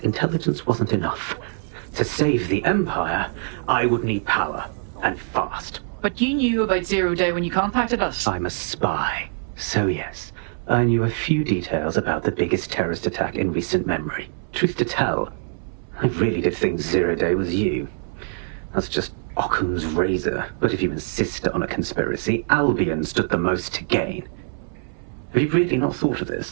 intelligence wasn't enough. To save the Empire, I would need power, and fast. But you knew about Zero Day when you contacted us. I'm a spy. So yes, I knew a few details about the biggest terrorist attack in recent memory. Truth to tell, I really did think Zero Day was you. That's just Occam's razor. But if you insist on a conspiracy, Albion stood the most to gain. Have you really not thought of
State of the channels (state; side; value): silent; left; 63 dB below the other